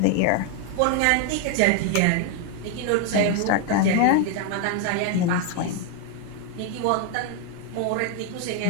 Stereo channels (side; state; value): both; different; correlation 0.01